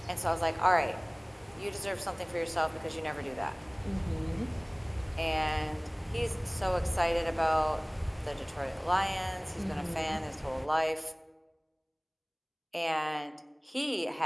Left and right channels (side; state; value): both; identical; correlation 1.00